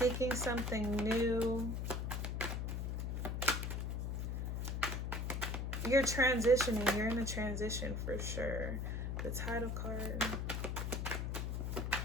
something new. You're transitioning. You're in a transition for sure. The title card.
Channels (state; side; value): noise; left; hum, 1 dB below the sound